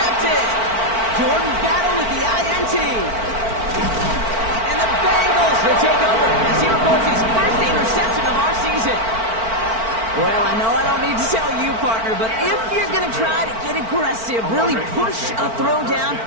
Jordan Battle with the INT. And the Bengals will take over as he records his first interception of our season. Well, I know I don't need to tell you, partner, but if you're going to try to get aggressive, really push a throw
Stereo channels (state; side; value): late; left; 4.5 ms